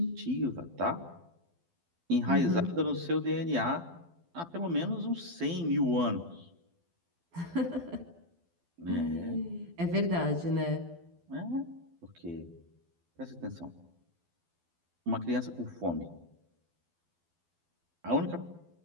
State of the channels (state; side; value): late; left; 12 ms